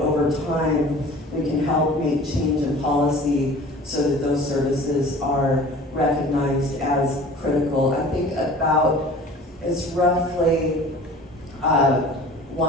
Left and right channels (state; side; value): normal; both; correlation 0.44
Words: time, we can help make change in policy so that those services are recognized as critical. I think it's roughly